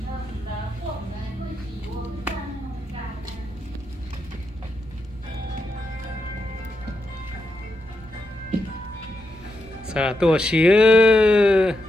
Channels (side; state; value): both; normal; correlation 0.84